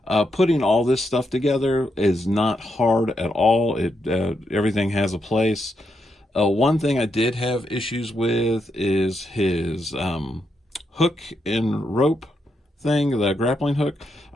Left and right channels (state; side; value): normal; both; correlation 0.81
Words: Putting all this stuff together is not hard at all. Everything has a place. One thing I did have issues with is his hook and rope thing, the grappling hook.